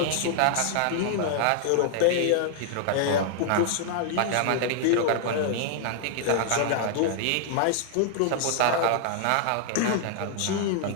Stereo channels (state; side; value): different; both; correlation 0.00